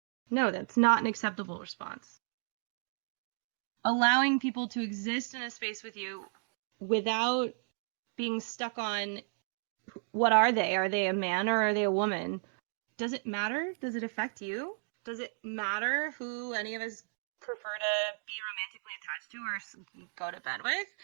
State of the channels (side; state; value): left; silent; 55 dB below the other